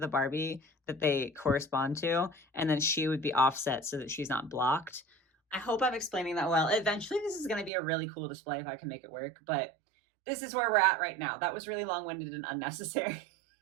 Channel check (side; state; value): left; drops out; at 7.7 s